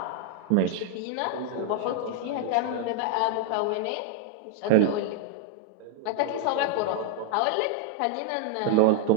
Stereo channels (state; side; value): different; both; correlation 0.00